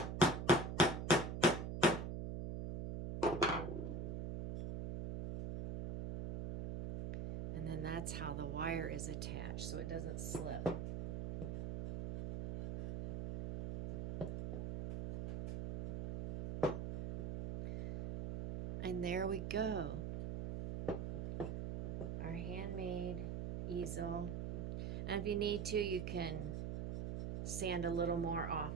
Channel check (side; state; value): right; noise; hum, 4 dB below the sound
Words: And then that's how the wire is attached so it doesn't slip. And there we go. Our handmade easel. And if you need to, you can sand a little more off